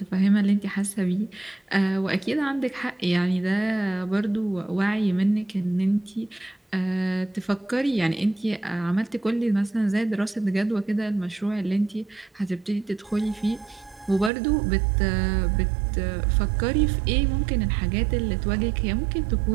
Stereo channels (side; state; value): left; drops out; at 14.3 s